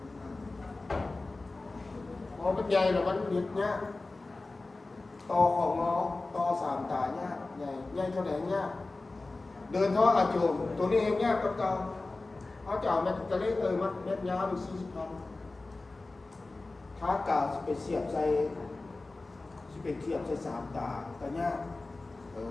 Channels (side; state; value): right; quieter; 3.3 dB